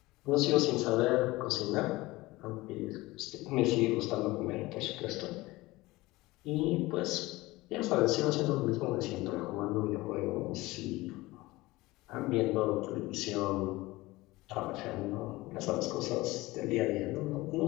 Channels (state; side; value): quieter; right; 20.0 dB